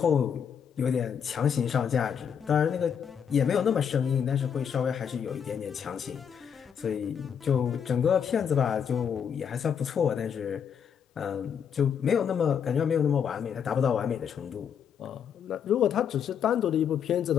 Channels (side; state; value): right; quieter; 7.7 dB